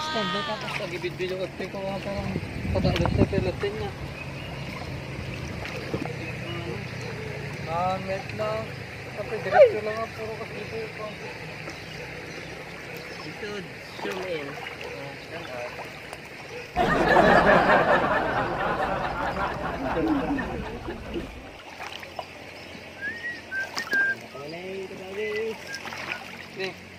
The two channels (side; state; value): both; identical; correlation 1.00